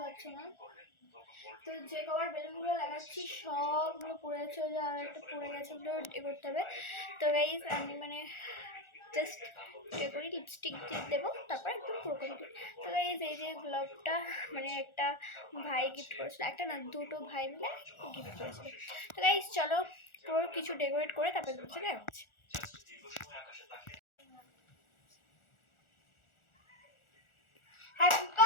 পারছো না। তো যে কভার বেলুনগুলো লাগাচ্ছি সবগুলো পড়ে যাচ্ছে, ওই যে আর একটা পড়ে গেছে, ওগুলো এ করতে হবে। তো গাইজ আমি মানে জাস্ট এ করি, লিপস্টিক দিয়ে দেবো, তারপর একদম পুরো কমপ্লিট। তো গাইজ এই যে গ্লোভটা মানে একটা ভাই গিফট করেছিল, একটা না দুটো ভাই মিলে গিফট করেছিল। তো গাইজ চলো পুরো কিছু ডেকোরেট করে তারপর চলে যাচ্ছে। Happy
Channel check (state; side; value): late; right; 1.4 ms